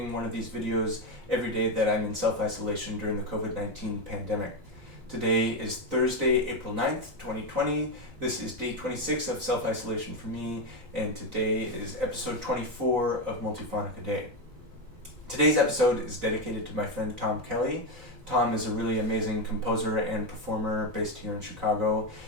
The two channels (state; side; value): late; left; 4.0 ms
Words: one of these videos every day that I'm in self-isolation during the COVID-19 pandemic. Today is Thursday, April 9th, 2020. This is day 26 of self-isolation for me, and today is episode 24 of Multiphonic-a-Day. Today's episode is dedicated to my friend Tom Kelly. Tom is a really amazing composer and performer based here in Chicago.